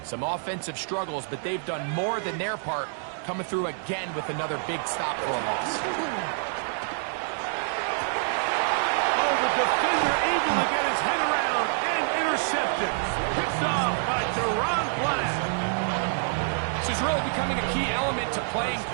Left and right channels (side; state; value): left; silent; digital silence